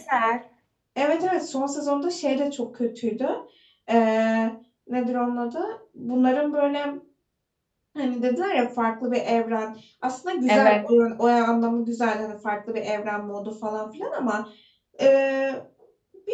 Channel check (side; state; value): both; identical; correlation 1.00